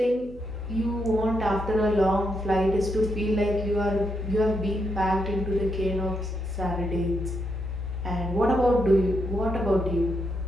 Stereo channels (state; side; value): noise; right; hum, 19 dB below the sound